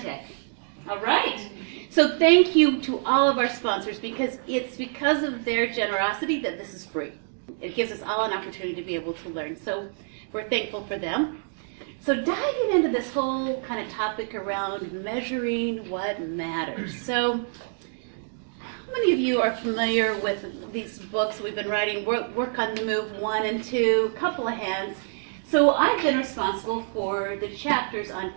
All right. So thank you to all of our sponsors, because it's because of their generosity that this is free. It gives us all an opportunity to be able to learn. So we're thankful for them. So diving into this whole kind of topic around measuring what matters. So how many of you are familiar with these books we've been writing, Work on the Move 1 and 2, couple of hands. So I've been responsible for the chapters on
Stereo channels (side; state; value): left; silent; 61 dB below the other